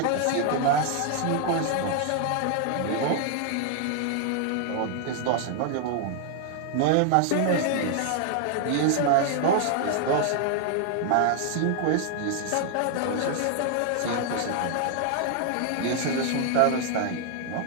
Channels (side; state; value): both; different; correlation 0.00